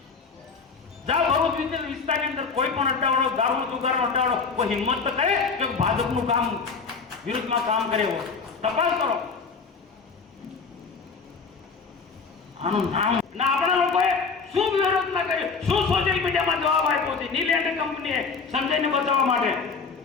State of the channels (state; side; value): quieter; right; 5.0 dB